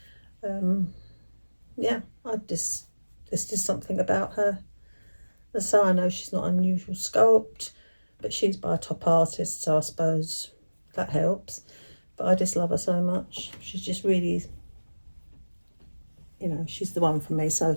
Yeah, there's just something about her. So I know she's not unusual sculpt, but she's by a top artist, so I suppose that helps. But I just love her so much. She's just really, you know, she's the one for me so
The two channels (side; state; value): both; inverted; correlation -1.00